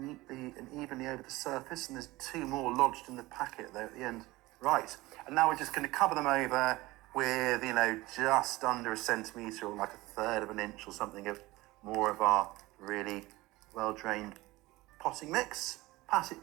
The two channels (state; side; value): quieter; left; 19.8 dB